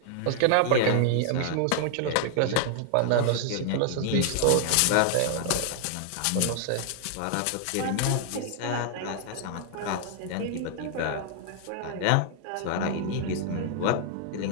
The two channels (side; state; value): both; different; correlation 0.00